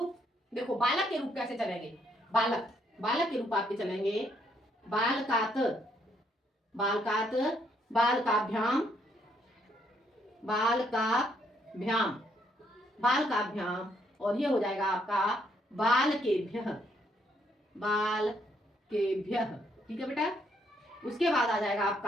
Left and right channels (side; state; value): both; normal; correlation 0.72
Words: देखो, बालक के रूप कैसे चलेंगे? बालक बालक के रूप आपके चलेंगे बालकात, बालकात, बालकाभ्याम, बालकाभ्याम, बालकाभ्याम, और ये हो जाएगा आपका बालकेभ्यः, बालकेभ्यः ठीक है बेटा। उसके बाद आ जाएगा